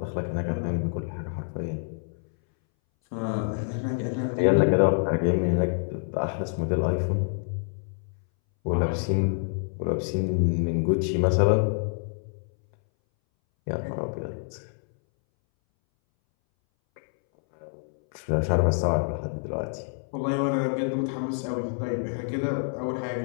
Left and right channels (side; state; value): right; silent; 60 dB below the other